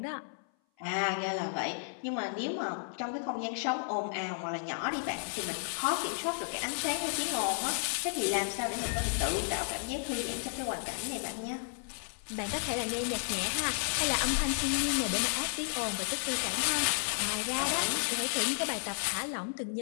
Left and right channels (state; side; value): silent; right; 56 dB below the other